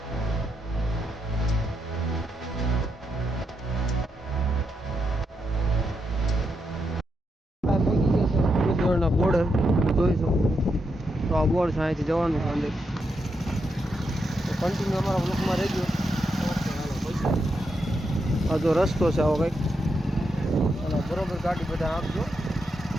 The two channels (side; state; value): both; normal; correlation 0.83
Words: બોર્ડ જોઈ શકો તો આ બોર્ડ છે, અહીંથી જવાનું છે અંદર. તો કન્ટિન્યુ અમારા બ્લોકમાં રહેજો. આ જો રસ્તો છે આવો કંઈક, અને બરોબર ગાડી બધા આપજો.